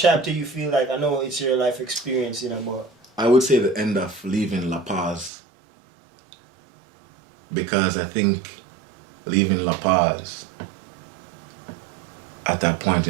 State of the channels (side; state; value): left; drops out; at 5.3 s